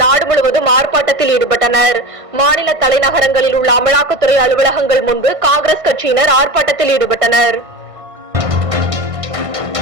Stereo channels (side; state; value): left; late; 1.6 ms